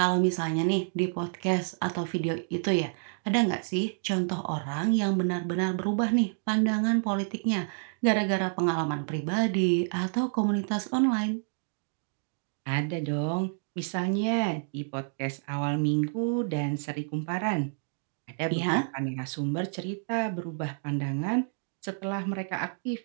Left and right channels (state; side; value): silent; left; digital silence